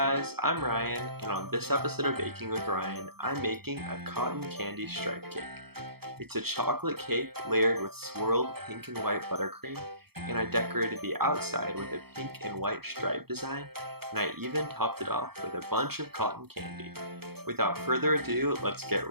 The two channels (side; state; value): left; late; 0.96 ms